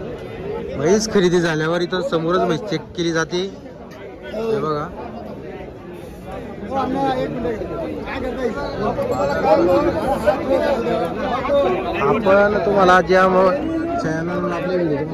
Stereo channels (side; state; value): both; identical; correlation 1.00